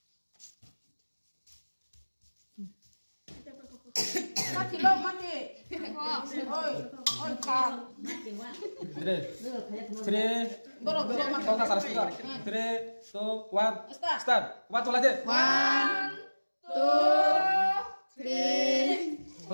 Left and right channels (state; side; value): inverted; both; correlation -1.00